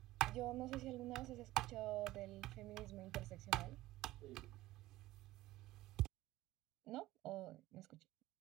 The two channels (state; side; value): quieter; left; 16.9 dB